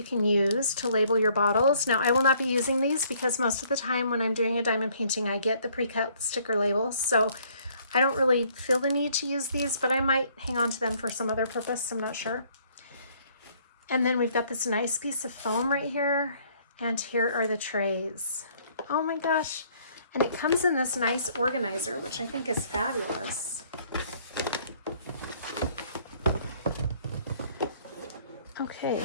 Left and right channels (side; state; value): both; inverted; correlation -0.63